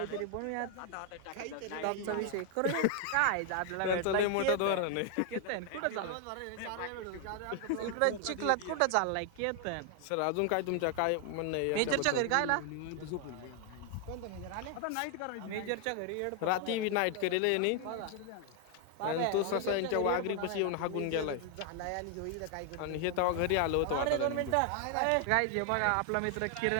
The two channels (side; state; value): both; different; correlation 0.00